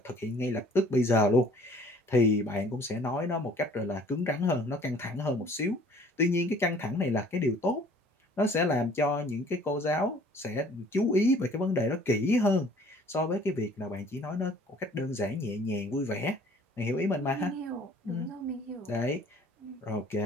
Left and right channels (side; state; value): both; normal; correlation 0.54